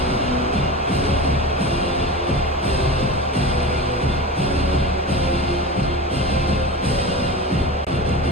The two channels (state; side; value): normal; both; correlation 0.28